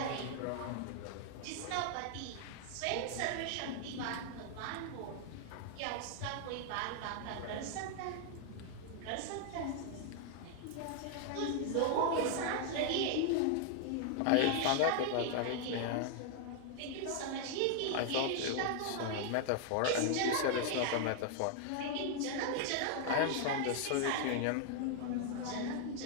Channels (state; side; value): different; both; correlation 0.00